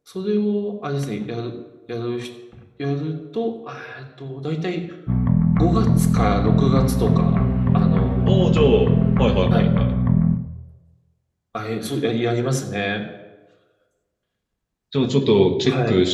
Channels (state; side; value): identical; both; correlation 1.00